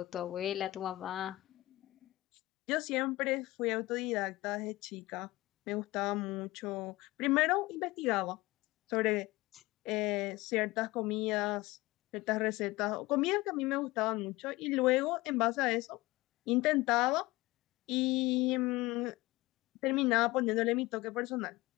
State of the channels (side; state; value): right; quieter; 19.8 dB